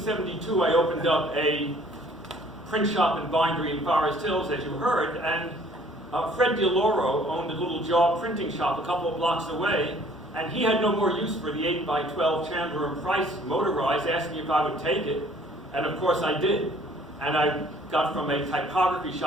I opened up a print shop and bindery in Forest Hills, as you heard, and Fred DeLauro owned a little job printing shop a couple of blocks away, and he had no more use for the 8x12 Chandler and Price motorized, asked me if I would take it, and of course I did. And I got from a typography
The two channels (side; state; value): both; normal; correlation 0.57